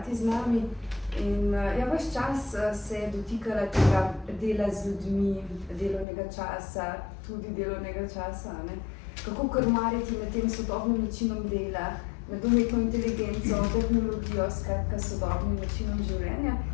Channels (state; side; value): drops out; right; at 6.1 s